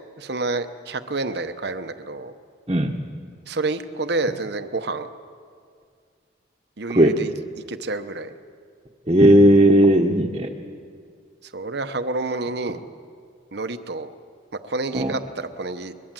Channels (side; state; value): both; normal; correlation 0.55